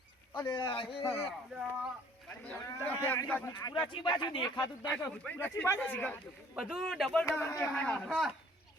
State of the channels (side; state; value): both; normal; correlation 0.56